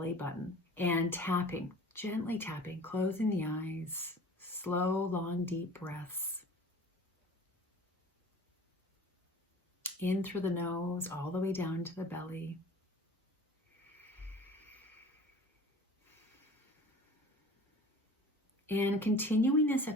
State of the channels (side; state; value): both; normal; correlation 0.43